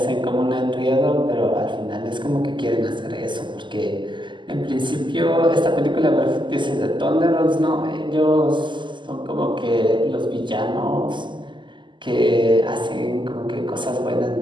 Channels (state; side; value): late; left; 0.23 ms